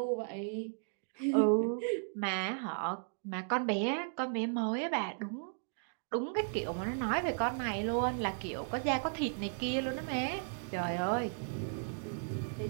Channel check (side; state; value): left; silent; digital silence